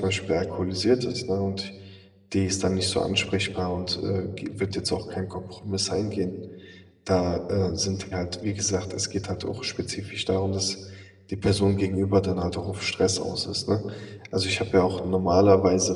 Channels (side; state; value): both; identical; correlation 1.00